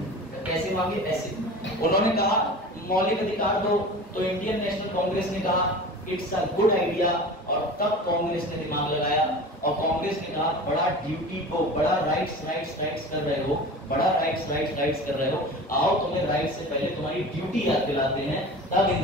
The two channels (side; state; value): both; normal; correlation 0.36